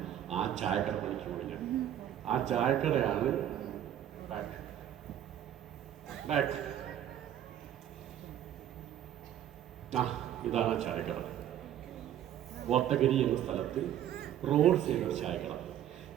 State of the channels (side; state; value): left; quieter; 11.1 dB